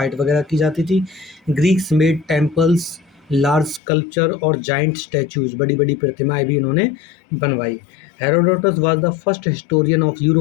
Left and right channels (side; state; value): right; drops out; at 3.8 s